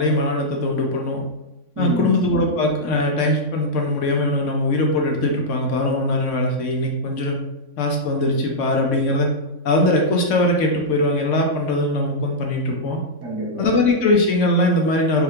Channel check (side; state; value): right; late; 3.5 ms